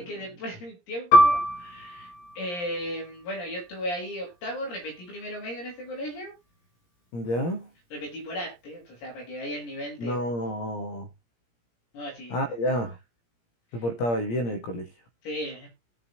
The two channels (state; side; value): late; right; 17 ms